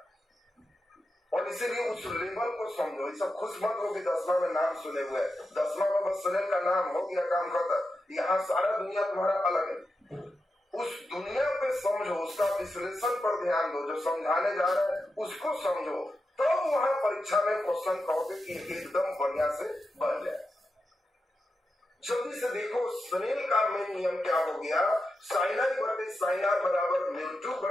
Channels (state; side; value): normal; both; correlation 0.89